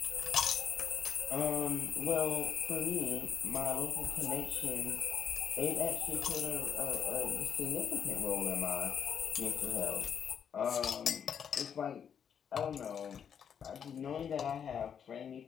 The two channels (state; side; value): quieter; right; 7.9 dB